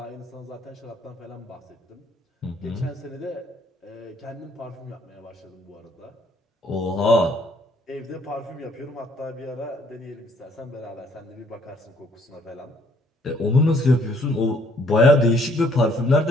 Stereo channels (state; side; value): normal; both; correlation 0.64